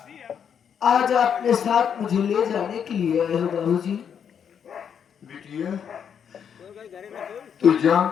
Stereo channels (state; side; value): quieter; right; 7.8 dB